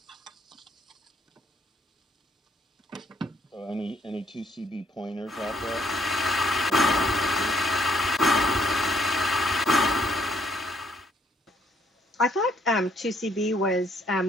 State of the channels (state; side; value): normal; both; correlation 0.68